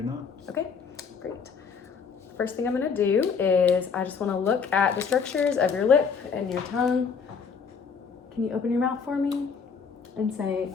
not. Okay, great. First thing I'm going to do is I just want to look at the structures of your lip and your tongue. Can you open your mouth for me and say,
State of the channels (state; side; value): quieter; right; 5.9 dB